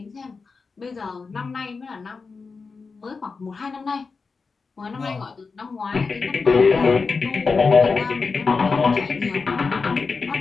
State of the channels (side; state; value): right; quieter; 4.6 dB